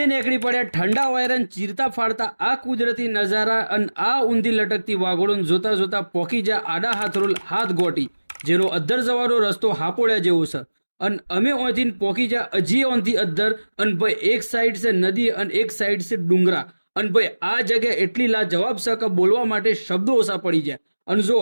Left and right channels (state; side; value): inverted; both; correlation -1.00